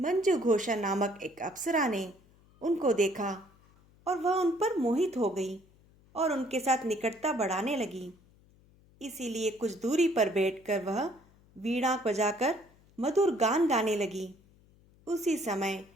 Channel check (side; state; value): left; noise; hum, 29 dB below the sound